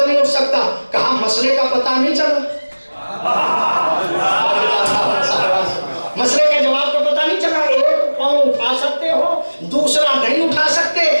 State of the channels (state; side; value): inverted; both; correlation -1.00